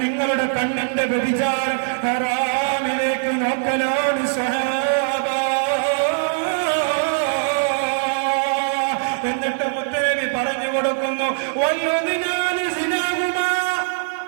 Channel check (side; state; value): left; silent; digital silence